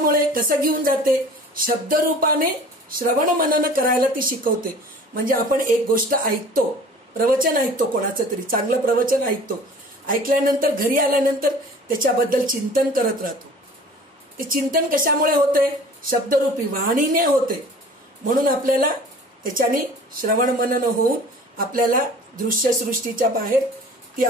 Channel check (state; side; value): normal; both; correlation 0.45